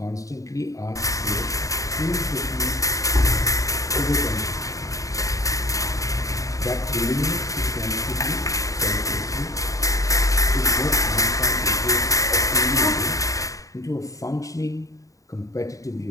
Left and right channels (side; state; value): right; late; 0.16 ms